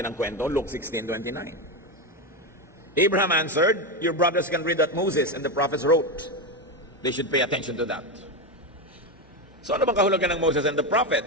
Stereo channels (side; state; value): both; normal; correlation 0.12